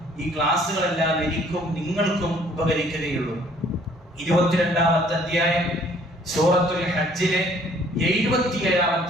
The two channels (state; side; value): normal; both; correlation 0.59